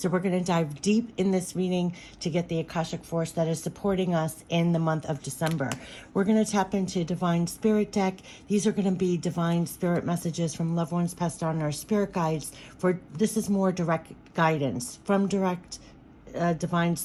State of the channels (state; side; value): identical; both; correlation 1.00